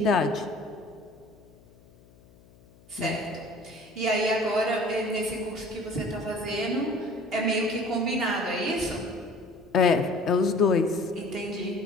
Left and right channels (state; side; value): noise; left; hum, 26 dB below the sound